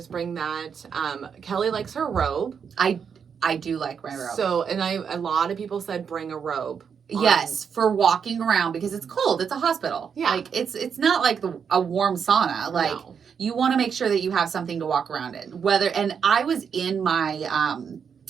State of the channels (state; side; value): quieter; left; 6.8 dB